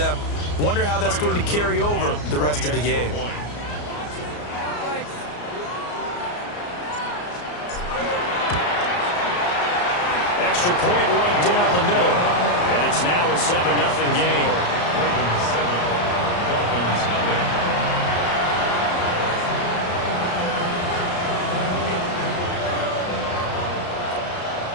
Wonder how that's going to carry over the rest of the game. Extra point right down the middle. And it's now a 7-0 game. Ravens 7, Dolphins 0.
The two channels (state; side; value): late; right; 34 ms